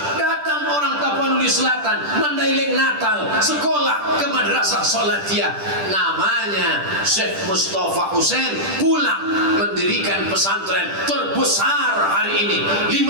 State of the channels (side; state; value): left; late; 10 ms